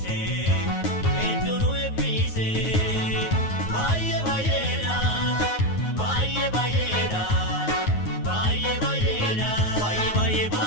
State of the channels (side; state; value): right; late; 9.4 ms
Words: Hedduunu eebbise Baay'ee baay'eedha Baay'ee baay'eedha Baay'ee baay'eedha Baay'ee baay'ee